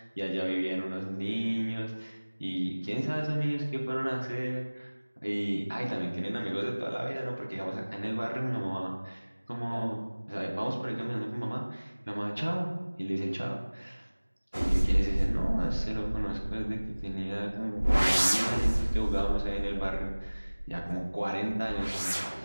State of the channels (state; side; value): inverted; both; correlation -1.00